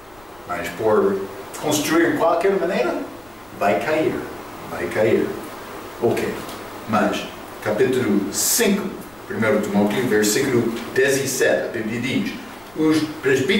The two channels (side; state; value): left; noise; rumble, 27 dB below the sound